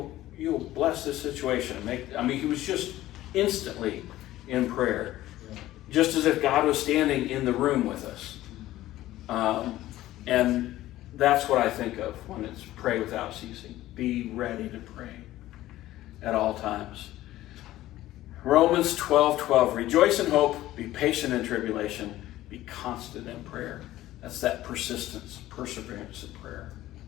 bless this situation and he was just instantly in prayer, just as if God was standing in the room with us. And that's what I think of when it's pray without ceasing. Be ready to pray at all times. Romans 12:12. Rejoice in hope, be patient in tribulation, be constant in prayer. That's that persistence, perseverance in prayer.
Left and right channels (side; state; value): right; quieter; 15.2 dB